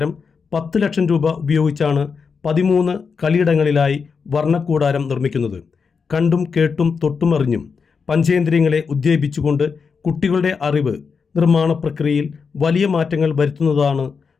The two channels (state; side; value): quieter; right; 5.5 dB